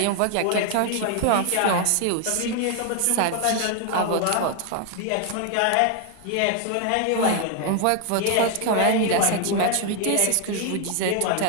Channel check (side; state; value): both; different; correlation 0.00